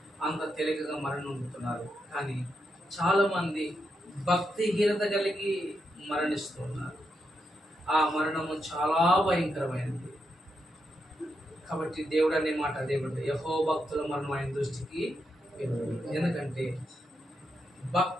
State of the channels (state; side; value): normal; both; correlation 0.84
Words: అంత తేలికగా మరణం పొందుతున్నారు. కానీ చాలామంది భక్తిహీనత కలిగి మరణిస్తున్నారు. ఆ మరణము చాలా భయంకరమైనది. కాబట్టి దేవుడు అనే మాట దేవుడు, యెహోవా భక్తుల మరణం ఆయన దృష్టికి ఎందుకంటే